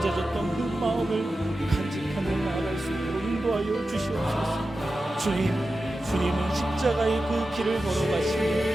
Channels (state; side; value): normal; both; correlation 0.92